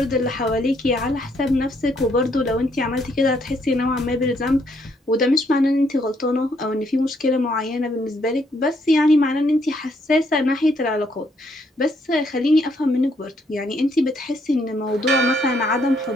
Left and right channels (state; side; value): normal; both; correlation 0.71